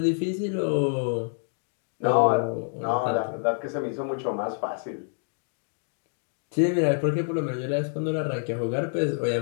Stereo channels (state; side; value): silent; right; digital silence